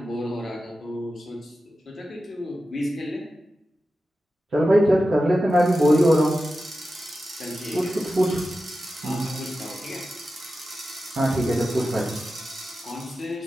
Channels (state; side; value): normal; both; correlation 0.93